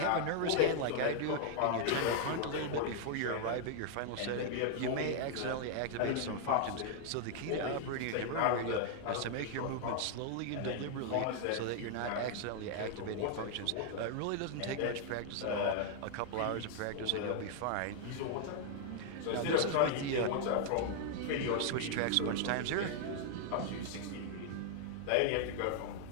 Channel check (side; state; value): both; different; correlation 0.00